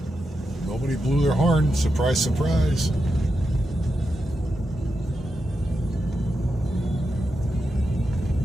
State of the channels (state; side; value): normal; both; correlation 0.87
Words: Nobody blew their horn. Surprise, surprise.